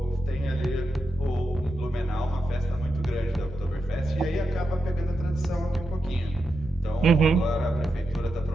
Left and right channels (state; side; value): normal; both; correlation 0.87